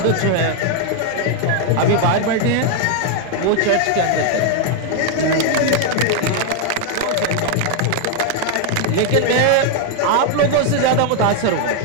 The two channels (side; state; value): both; different; correlation 0.00